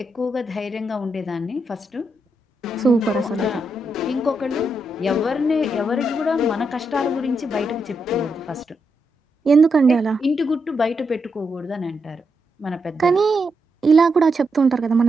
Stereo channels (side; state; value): both; normal; correlation 0.83